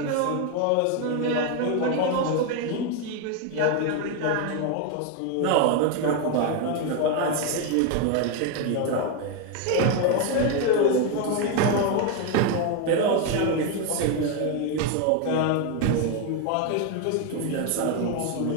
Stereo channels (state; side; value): different; both; correlation 0.02